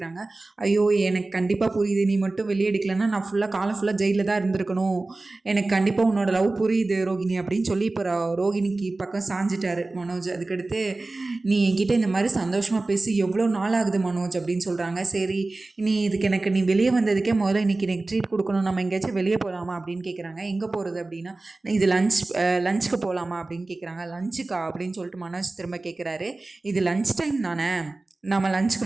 ஐயோ எனக்கு கண்டிப்பாக புரியுது, நீ மட்டும் வெளியே எடுக்கலன்னா நான் காலம் ஃபுல்லாக ஜெயிலில் தான் இருந்திருக்கணும். எனக்கு கண்டிப்பாக உன்னோட லவ் புரியுது ரோகிணி அப்படின்னு சொல்லி இப்போ ரோகிணிக்கு பக்கம் சாஞ்சிட்டாரு மனோஜ். அதுக்கடுத்து நீ என்கிட்ட இந்த மாதிரி சந்தோஷமாக பேசி எவ்வளோ நாள் ஆகுது மனோஜ் அப்படின்னு சொல்கிறாங்க. சரி நீ நீ வெளியே வந்ததுக்கே முதல்ல இன்னைக்கு எனக்கு ட்ரீட் கொடுக்கணும், நம்ம எங்கேயாச்சும் வெளியே போகலாமா அப்படின்னு கேட்குறாங்க. எங்கே போகிறது அப்படின்னா, இது லஞ்சுக்கு போகலாமா அப்படின்னு கேட்குறாங்க. லஞ்சுக்கா அப்படின்னு சொல்லிட்டு மனோஜ் திரும்ப கேட்குறாரு. இது லஞ்ச் டைம் தானே, நம்ம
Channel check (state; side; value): quieter; left; 3.2 dB